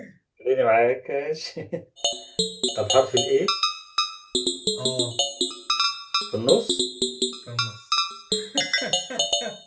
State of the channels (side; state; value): both; identical; correlation 1.00